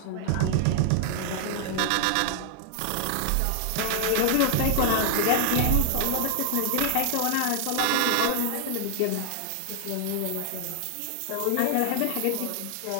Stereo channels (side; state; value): both; different; correlation 0.00